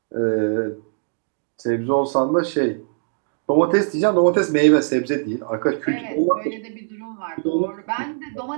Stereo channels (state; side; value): silent; left; 63 dB below the other